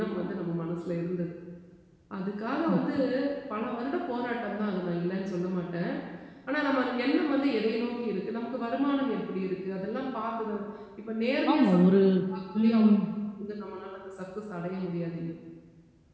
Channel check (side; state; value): both; identical; correlation 1.00